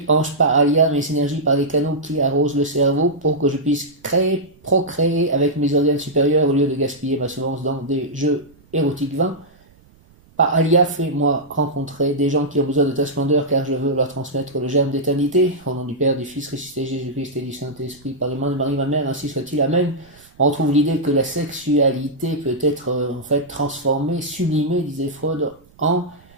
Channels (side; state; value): right; noise; rumble, 29 dB below the sound